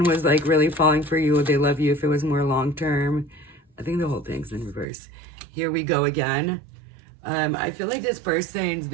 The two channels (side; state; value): left; drops out; at 4.9 s